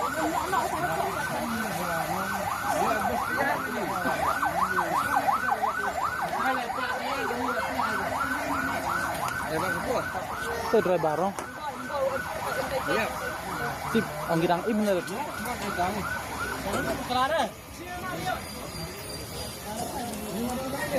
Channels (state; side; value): identical; both; correlation 1.00